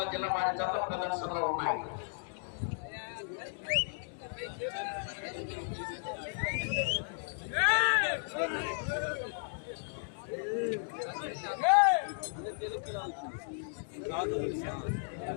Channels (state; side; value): silent; right; digital silence